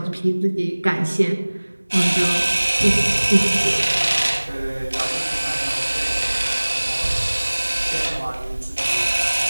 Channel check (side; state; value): both; inverted; correlation -1.00